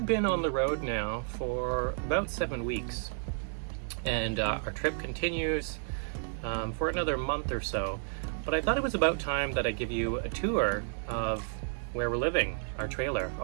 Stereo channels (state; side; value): silent; left; digital silence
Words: been on the road now for about 7 weeks, and our trip continues for another month or so. But I thought it was about time that I give you a tour of where we're living, our trailer.